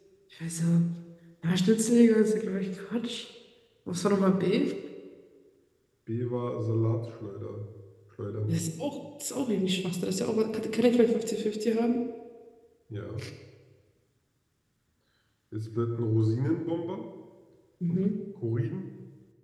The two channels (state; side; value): identical; both; correlation 1.00